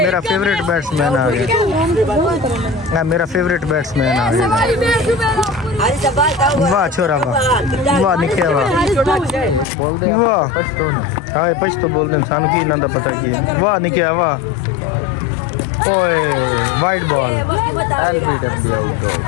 फेवरेट बैट्समैन आ गया, मेरा फेवरेट बैट्समैन आ गया। वाह छोरा वाह, वाह निक्के वाह वाह, हाँ पछ तो बोलते हैं सानू की ना पता की, वाह निक्के वाह। ओए वाइट बॉल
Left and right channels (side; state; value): right; drops out; at 9.7 s